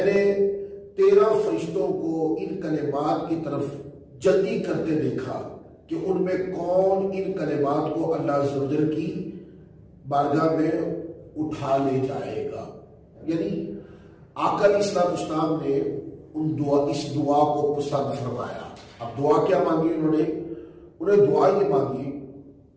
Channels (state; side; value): identical; both; correlation 1.00